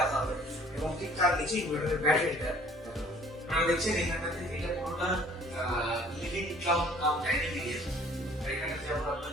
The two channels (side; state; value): both; normal; correlation 0.55